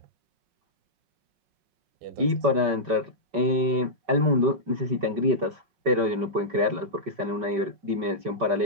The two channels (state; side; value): late; left; 5.2 ms